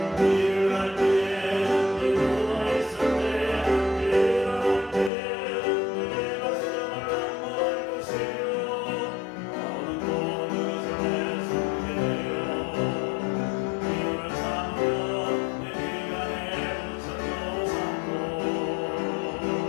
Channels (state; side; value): drops out; right; at 5.1 s